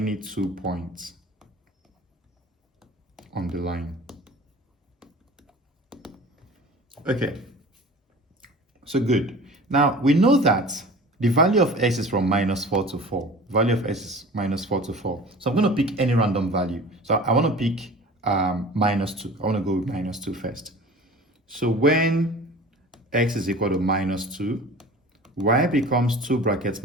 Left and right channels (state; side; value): normal; both; correlation 0.40